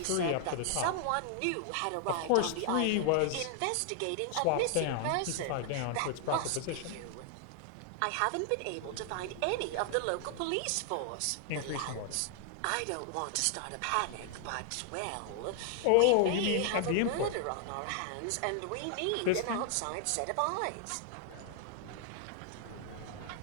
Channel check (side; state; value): both; different; correlation 0.00